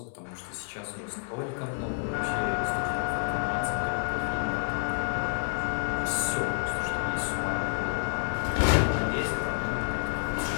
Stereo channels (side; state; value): right; silent; digital silence